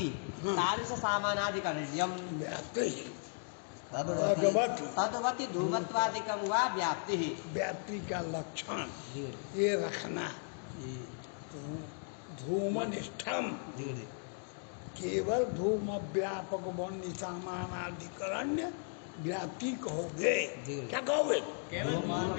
तादृश सामानाधिकरण्यम् तद्वति धूमत्वादिकं वा व्याप्ति। व्याप्ति का लक्षण ये रखना। धूमनिष्ठम केवल धूम व्यापक वन्य सामानाधिकरण्य व्याप्ति कहोगे। क्या कहोगे?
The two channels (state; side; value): silent; right; 54 dB below the other